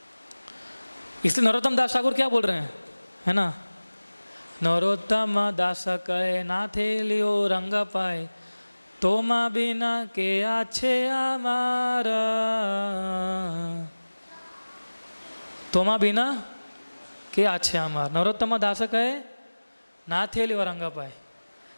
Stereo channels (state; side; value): inverted; both; correlation -1.00